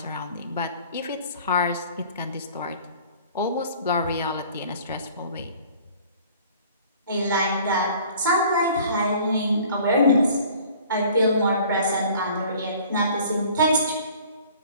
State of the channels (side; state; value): both; inverted; correlation -0.51